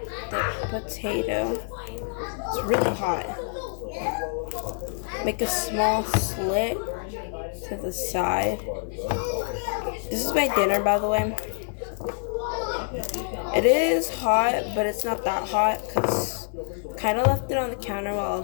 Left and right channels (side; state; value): right; silent; 61 dB below the other